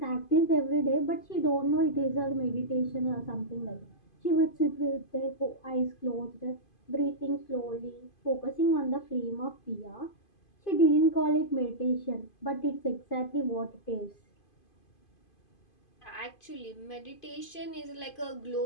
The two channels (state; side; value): late; right; 2.5 ms